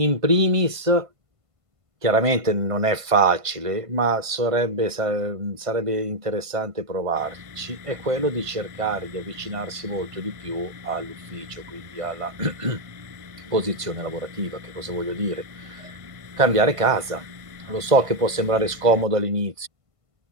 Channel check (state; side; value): late; left; 1.5 ms